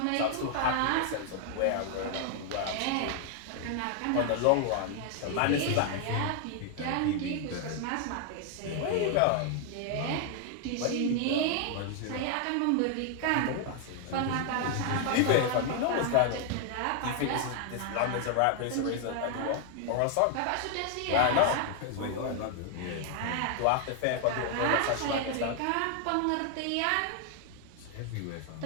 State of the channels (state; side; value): different; both; correlation 0.00